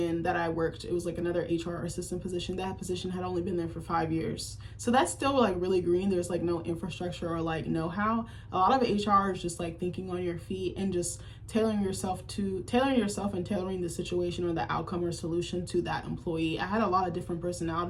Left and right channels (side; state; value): both; identical; correlation 1.00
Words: that I worked, it was like another HR assistant position. That position had only been there for 5 years. So that's still like really green. There's like no infrastructure or like know-how. A lot of HR is just like thinking on your feet and just tailoring yourself and tailoring the situation or the outcome or solution to that employee. I had a lot of different